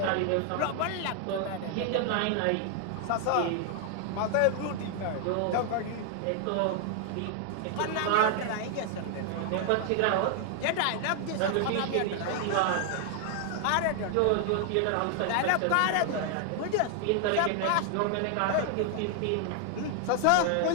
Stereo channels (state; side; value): different; both; correlation 0.00